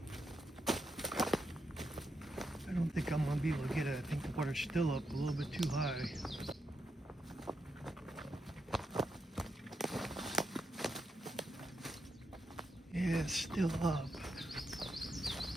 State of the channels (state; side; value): normal; both; correlation 0.83